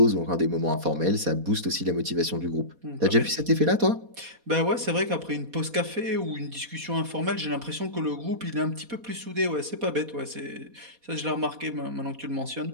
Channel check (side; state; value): left; late; 4.2 ms